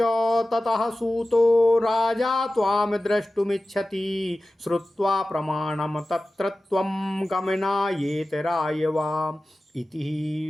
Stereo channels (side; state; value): both; normal; correlation 0.96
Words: ततः सूतो राजा त्वां द्रष्टुमिच्छति श्रुत्वा प्रमाणं तत्र त्वं गमनायेत रायवा